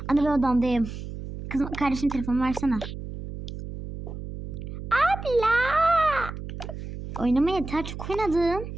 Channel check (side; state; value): right; noise; hum, 9 dB below the sound